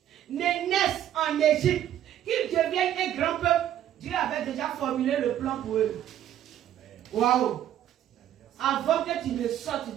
ne naissent en Égypte, qu'ils deviennent un grand peuple, Dieu avait déjà formulé le plan pour eux. Waouh! Avant que tu ne sortes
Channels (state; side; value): quieter; left; 11.4 dB